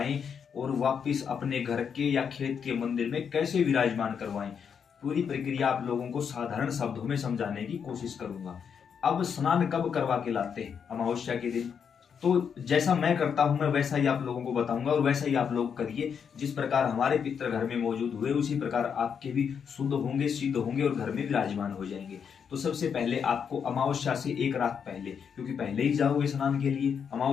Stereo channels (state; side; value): quieter; right; 7.1 dB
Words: और वापिस अपने घर के या खेत के मंदिर में कैसे विराजमान करवाएं। पूरी प्रक्रिया आप लोगों को साधारण शब्दों में समझाने की कोशिश करूंगा। अब स्नान कब करवा के लाते हैं? अमावस्या के दिन। तो जैसा मैं करता हूं मैं वैसा ही आप लोगों को बताऊंगा और वैसा ही आप लोग करिए। जिस प्रकार हमारे पितर घर में मौजूद हुए उसी प्रकार आपके भी शुद्ध होंगे, सिद्ध होंगे और घर में विराजमान हो जाएंगे। तो सबसे पहले आपको अमावस्या से एक रात पहले, क्योंकि पहले ही जाओगे स्नान के लिए,